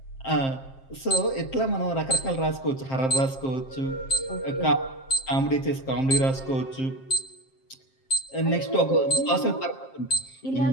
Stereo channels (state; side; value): late; right; 7.5 ms